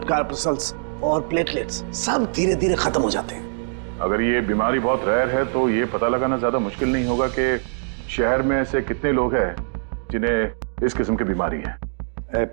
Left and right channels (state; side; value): silent; left; digital silence